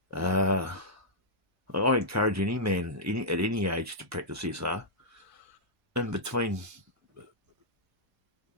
I encourage any man at any age to practice SR. In between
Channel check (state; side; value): normal; both; correlation -0.10